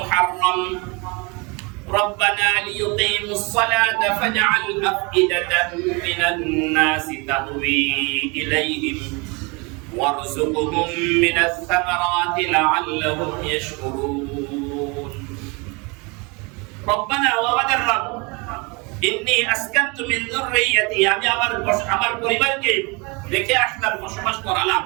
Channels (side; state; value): left; quieter; 28.8 dB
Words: রব্বানা লিয়ুকিমুস সালাতা ফাজ'আল আফইদাতাম মিনান নাসি তাহওয়ী ইলাইহিম ওয়ারযুকহুম মিনাস সামারাতি লা'আল্লাহুম ইয়াশকুরুন। রব্বানা ওয়া আমাদের রব ইন্নী আসকানতু মিন যুররিয়্যাতি আমি আমার পরিবারকে রেখে আসলাম, বসবাস করালাম